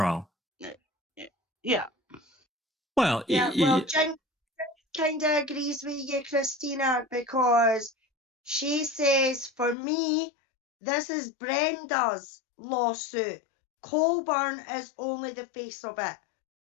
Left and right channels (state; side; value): drops out; right; at 9.8 s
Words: Yeah. Well, Yeah, well, Jen kind of agrees with you, Christina, because she says, for me, this is Brenda's lawsuit. Colborn is only the face of it.